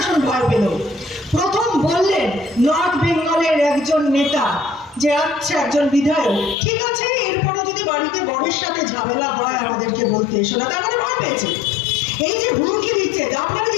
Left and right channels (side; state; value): right; drops out; at 6.6 s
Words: ভয় পেল। প্রথম বললেন নর্থ বেঙ্গলের একজন নেতা যে আচ্ছা একজন বিধায়ক, ঠিক আছে এরপরে যদি বাড়িতে বরের সাথে ঝামেলা হয় আমাদেরকে বলতে এসো না, তার মানে ভয় পেয়েছে। এই যে হুমকি দিচ্ছে, আপনাকে